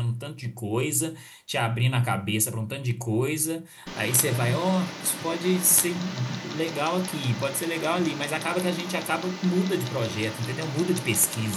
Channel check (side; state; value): both; identical; correlation 1.00